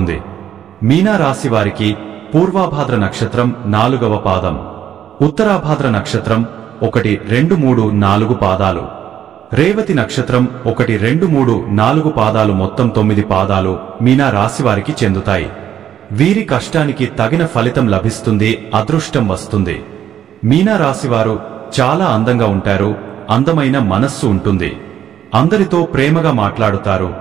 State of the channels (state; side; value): quieter; left; 10.1 dB